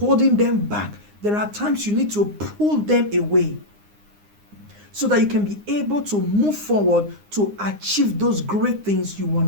them back. There are times you need to pull them away so that you can be able to move forward to achieve those great things you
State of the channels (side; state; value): left; late; 9.7 ms